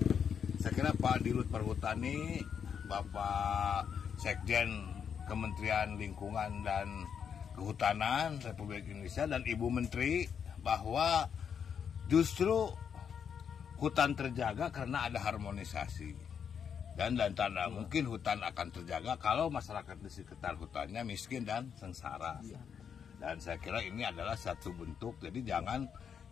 saya kira Pak Dirut Perhutani, Bapak Sekjen Kementerian Lingkungan dan Kehutanan Republik Indonesia dan Ibu Menteri, bahwa justru hutan terjaga karena ada harmonisasi. Dan tanda mungkin hutan akan terjaga kalau masyarakat di sekitar hutannya miskin dan sengsara. Dan saya kira ini adalah satu bentuk, jadi jangan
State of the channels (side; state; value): right; quieter; 7.4 dB